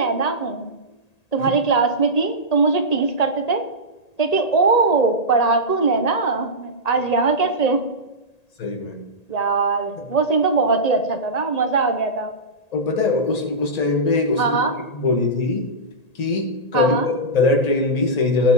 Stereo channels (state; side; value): late; right; 1.8 ms